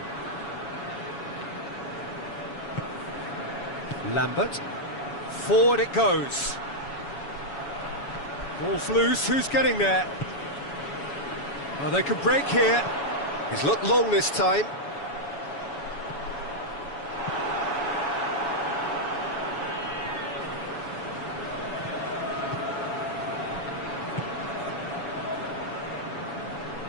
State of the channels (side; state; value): right; late; 7.1 ms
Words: Lambert. Forward it goes. Ball's loose. Who's getting there? Oh, they can break here. He's looked long this time.